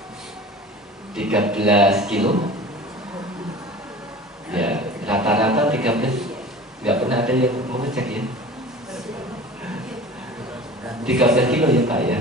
kilo. Ya, rata-rata 13. Nggak pernah ada yang mau ngecek ya. 13 kilo ya Pak ya.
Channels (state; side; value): normal; both; correlation 0.39